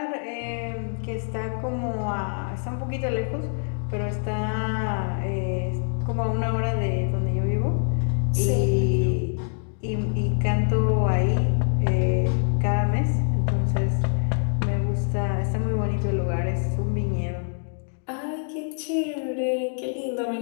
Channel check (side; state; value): right; silent; 62 dB below the other